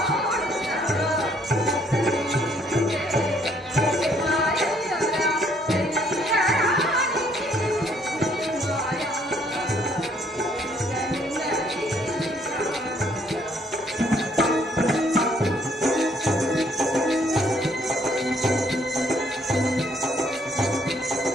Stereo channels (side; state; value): both; normal; correlation 0.66